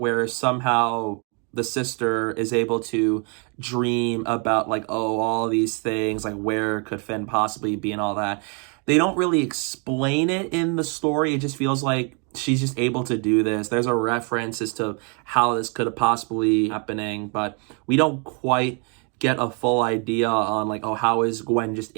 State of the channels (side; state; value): left; quieter; 36.3 dB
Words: somehow the sister is able to dream about like, oh, all these things, like where could Finn possibly be and all that. They don't really explain it in the story. It just feels like she's just able to do this. There's a reference as to how this could have possibly happening, but we don't quite get a full idea on like, oh, how is Gwen just